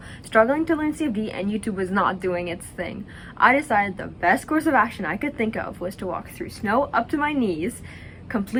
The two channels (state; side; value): identical; both; correlation 1.00